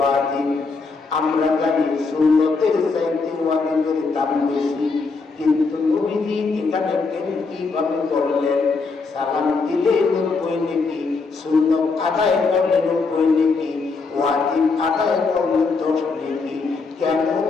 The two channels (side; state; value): right; quieter; 4.3 dB